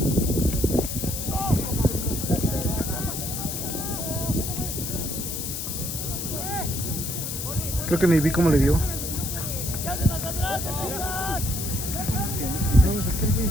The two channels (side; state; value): left; noise; hiss, 4 dB below the sound